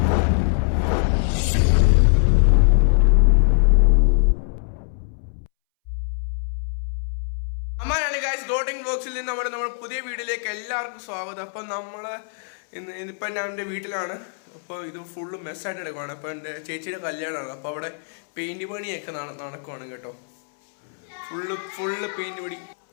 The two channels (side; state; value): right; silent; 63 dB below the other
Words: അമ്മാനാണ് ഗൈസ് ഗോട്ടിംഗ് വ്ലോഗ്സിൽ നിന്ന് നമ്മുടെ പുതിയ വീഡിയോയിലേക്ക് എല്ലാവർക്കും സ്വാഗതം. അപ്പം ഇന്നിപ്പോൾ ഞാൻ എൻ്റെ വീട്ടിലാണ്. അപ്പോൾ ഇത് ഫുള്ള് മെസ്സായിട്ട് എടുക്കുവാണ്. അപ്പോൾ എൻ്റെ ചേച്ചിയുടെ കല്യാണമാണ്. അപ്പോൾ അവിടെ പെയിൻറ്റ് പണിയൊക്കെ നടക്കുവാണ് കേട്ടോ. ഫുള്ള് പെയിൻറ്റ് പണി.